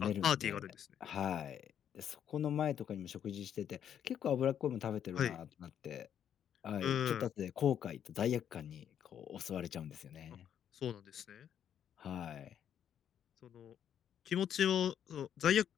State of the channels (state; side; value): quieter; right; 9.3 dB